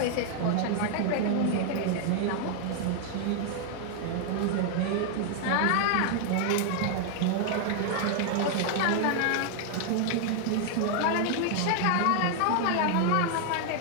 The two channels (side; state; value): both; different; correlation 0.00